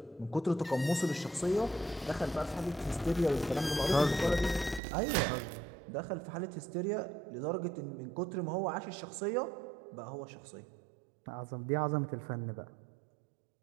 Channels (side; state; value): left; drops out; at 4.8 s